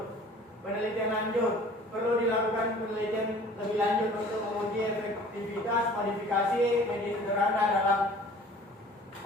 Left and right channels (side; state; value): both; normal; correlation 0.48